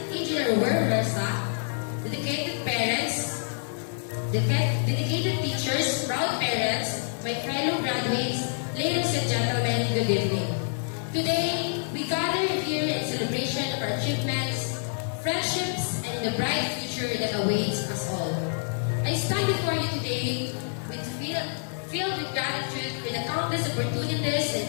Engineer Wer Versa, dedicated parents, dedicated teachers, proud parents, my fellow graduates, ladies and gentlemen, good evening. Today, we gather here in celebration of our achievements, friendships, and the bright future that awaits us all. I stand before you today filled with gratitude for the countless opportunities and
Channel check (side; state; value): right; silent; 60 dB below the other